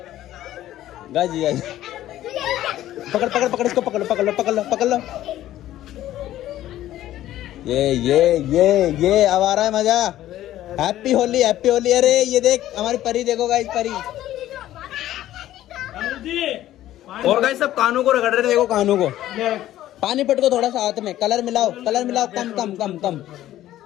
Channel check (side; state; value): right; quieter; 13.6 dB